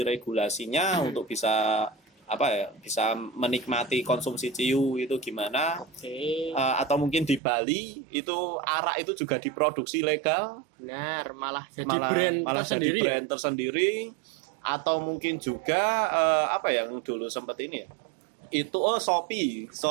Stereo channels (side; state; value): left; drops out; at 7.4 s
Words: untuk bisa bisa menikmati konsumsi ciu itu gimana. Atau mungkin di Bali itu arak itu juga diproduksi legal. Benar, malah jadi brand tersendiri. Atau mungkin juga yang dulu sempat ini ya. Itu Shopee